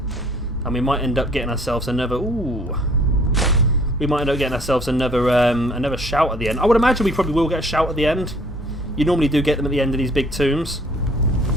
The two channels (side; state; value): both; normal; correlation 0.57